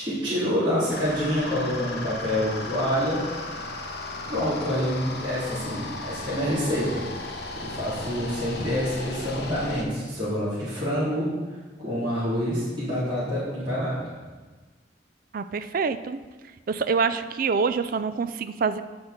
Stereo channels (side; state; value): both; normal; correlation 0.33